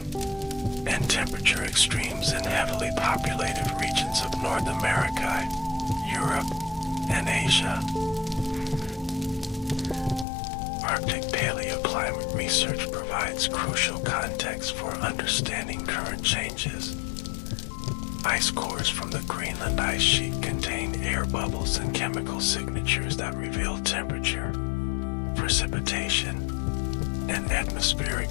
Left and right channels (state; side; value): drops out; right; at 10.2 s